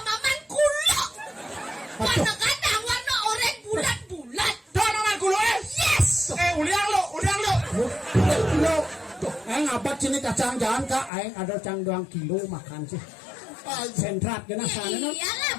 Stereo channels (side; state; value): right; drops out; at 11.1 s